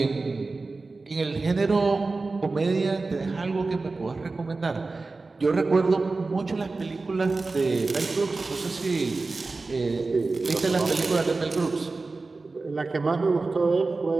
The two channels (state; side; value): quieter; left; 3.7 dB